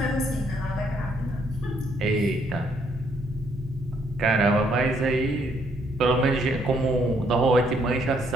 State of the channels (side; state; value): left; noise; hum, 27 dB below the sound